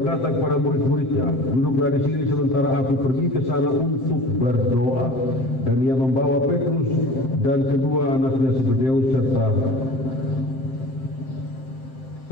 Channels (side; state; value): right; late; 7.7 ms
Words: kepada murid-muridnya, "Duduklah di sini sementara aku pergi ke sana untuk berdoa." Dan ia membawa Petrus dan kedua anaknya Zebedeus